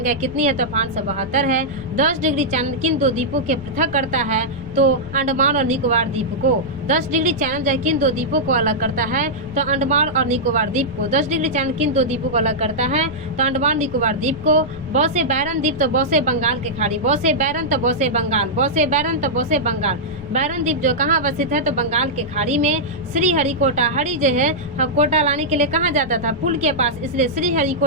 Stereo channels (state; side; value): noise; left; rumble, 14 dB below the sound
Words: कितनी है? तो 572 है। 10 डिग्री चैनल किन दो द्वीपों के पृथक करता है? तो अंडमान और निकोबार द्वीप को। 10 डिग्री चैनल जो है किन दो द्वीपों को अलग करता है? तो अंडमान और निकोबार द्वीप को। 10 डिग्री चैनल किन दो द्वीपों को अलग करता है? तो अंडमान निकोबार द्वीप को। बौसे बैरन द्वीप तो बौसे बंगाल के खाड़ी, बौसे बैरन तो बौसे बंगाल, बौसे बैरन तो बौसे बंगाल। बैरन द्वीप जो कहाँ अवस्थित है? तो बंगाल के खाड़ी में। श्री हरिकोटा, हरि जो है कोटा लाने के लिए कहाँ जाता था? पुल के पास, इसलिए श्री